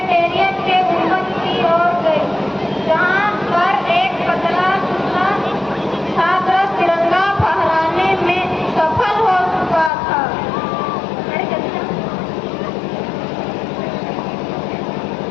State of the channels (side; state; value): right; drops out; at 9.9 s